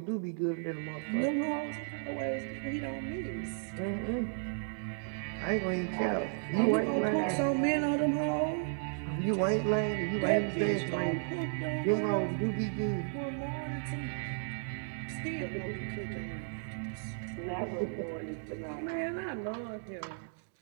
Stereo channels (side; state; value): left; silent; digital silence